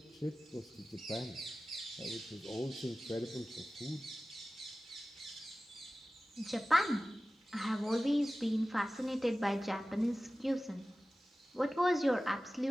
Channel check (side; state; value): both; normal; correlation 0.96